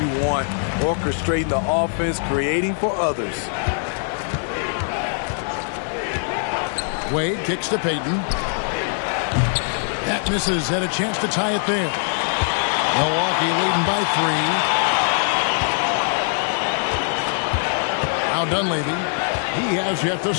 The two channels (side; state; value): right; silent; 64 dB below the other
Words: want. Orchestrating the offense, creating for others. Wade kicks to Payton. That misses. Had a chance to tie it there. Milwaukee leading by 3. Now Dunleavy. He has yet to